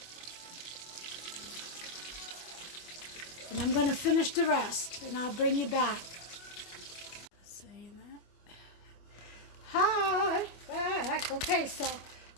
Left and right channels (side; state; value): right; late; 25 ms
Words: And I'm going to finish the rest. And I'll bring you back. Saying that. Hi, back. Okay, so